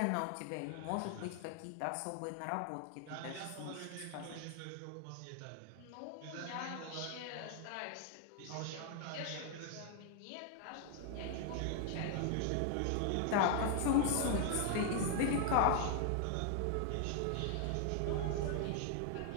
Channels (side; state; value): both; different; correlation 0.00